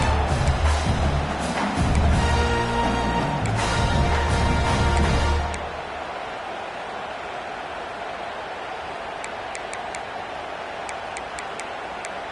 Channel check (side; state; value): both; identical; correlation 1.00